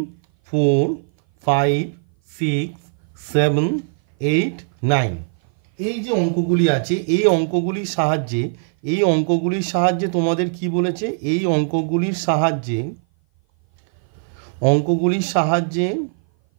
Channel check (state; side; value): silent; left; 58 dB below the other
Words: 4 5 6 7 8 9, এই যে অঙ্কগুলি আছে এই অঙ্কগুলির সাহায্যে তোমাদের কি বলেছে? এই অঙ্কগুলির সাহায্যে